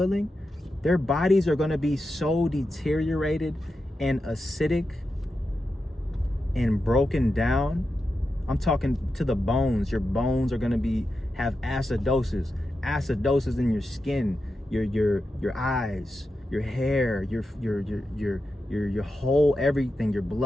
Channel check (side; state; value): both; normal; correlation 0.89